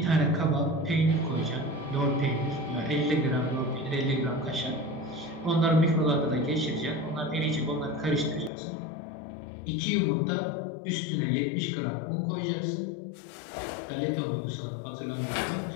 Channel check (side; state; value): right; drops out; at 8.5 s